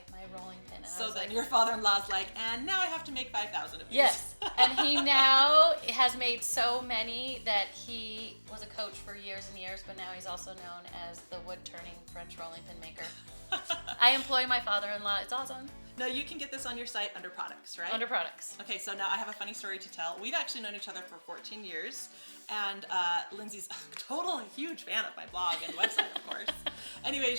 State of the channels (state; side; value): inverted; both; correlation -1.00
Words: my rolling pin. And I So was then like, your father-in-law's like, and now I have to make 5,000 of these. yes, and he now has made so many that he was a coach for years and years, but now he's also known as the wood-turning French rolling pin maker. I employ my father-in-law. It's awesome. Now you can get this on your site under products, right? Under products. Okay, so now I have a funny story to tell. We've actually known each other for 14 years, and Lindsay's a total huge fan of my blog and website, of course. Anyway,